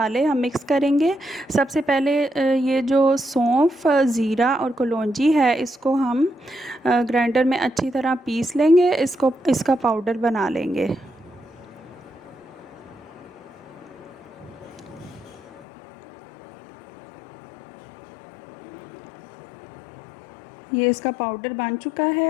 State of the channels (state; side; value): drops out; right; at 15.7 s